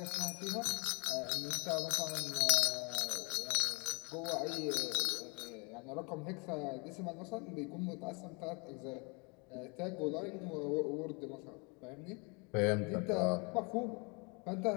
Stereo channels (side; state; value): right; quieter; 31.4 dB